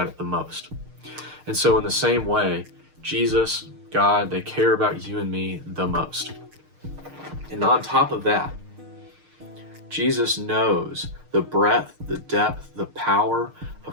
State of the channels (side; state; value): left; late; 6.5 ms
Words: it the most. And so in the same way, Jesus, God, they care about you and me the most. And on top of that, Jesus knows the breadth, the depth, the power